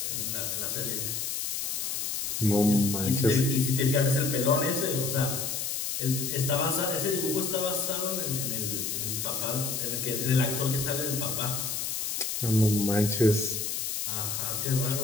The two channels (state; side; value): noise; left; hiss, 2 dB below the sound